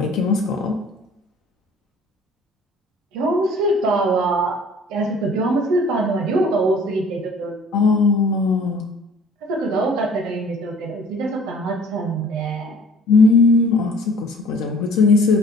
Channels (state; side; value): normal; both; correlation 0.51